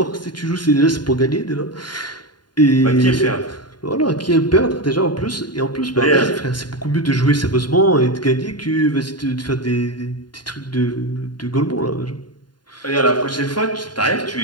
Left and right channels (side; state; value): right; late; 0.71 ms